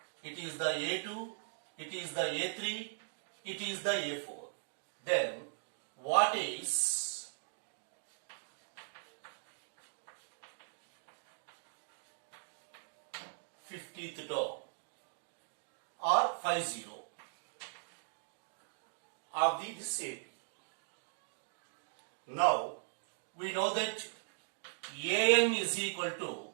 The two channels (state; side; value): silent; left; digital silence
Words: it is the A2, it is the A3, it is the A4. Then, what is 50th term or 50 of the this AP? Now, we know that AN is equal to